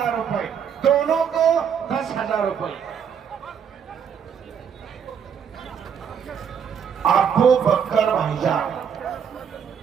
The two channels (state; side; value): quieter; left; 7.6 dB